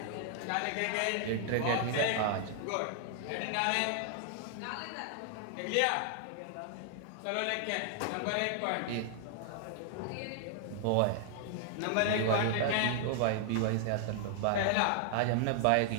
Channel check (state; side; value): different; both; correlation -0.01